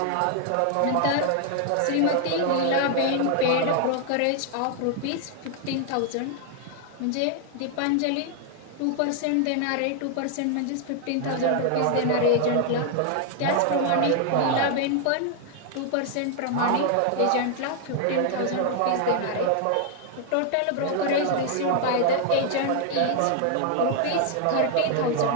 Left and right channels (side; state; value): both; different; correlation 0.00